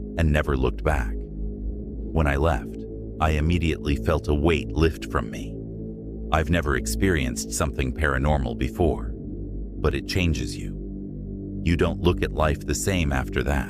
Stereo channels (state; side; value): identical; both; correlation 1.00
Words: and never looked back. When I left, I immediately felt a weight lift from me. I've never experienced something paranormal before, but it changes you. You don't look at life the same after